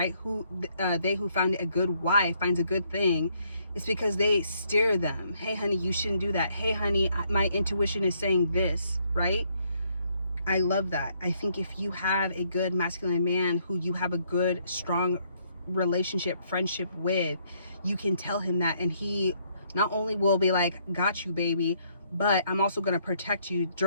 They who find a good wife finds a good thing. It's because they steer them. Hey, honey, you shouldn't do that. Hey, honey, my intuition is saying this, right? I love that. I think if you have a good masculine man who you have a good, strong relationship, friendship with, you can tell him that, and he not only will be like, got you, baby, but I'm also going to protect you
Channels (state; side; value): inverted; both; correlation -0.70